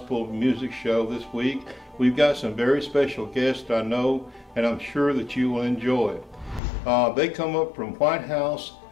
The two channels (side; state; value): right; drops out; at 6.6 s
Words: Music Show this week. We've got some very special guests I know, and I'm sure that you will enjoy. They come up from White House,